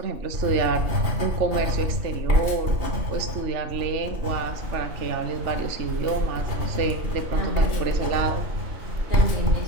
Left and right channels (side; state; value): left; late; 2.8 ms